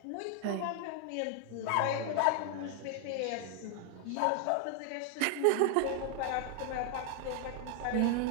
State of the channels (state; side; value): different; both; correlation 0.00